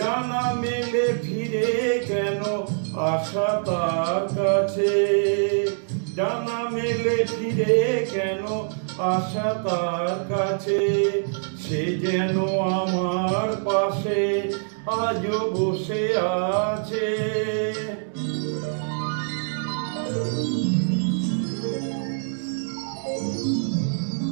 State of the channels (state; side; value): silent; left; digital silence